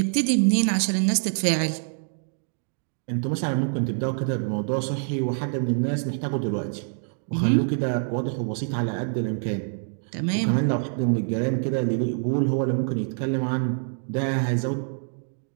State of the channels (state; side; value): silent; left; digital silence